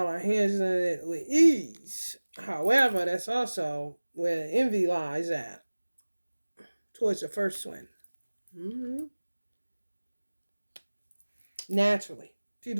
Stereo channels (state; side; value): inverted; both; correlation -1.00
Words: are handling it with ease. However, that's also where envy lies at. Towards the first one. Naturally.